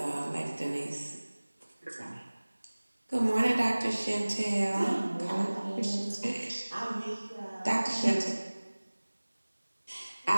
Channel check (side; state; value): both; inverted; correlation -1.00